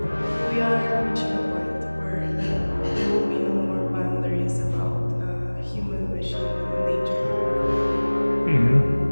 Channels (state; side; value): inverted; both; correlation -1.00